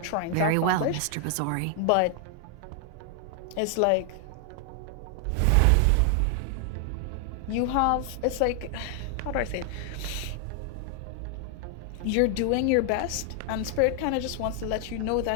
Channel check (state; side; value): different; both; correlation 0.00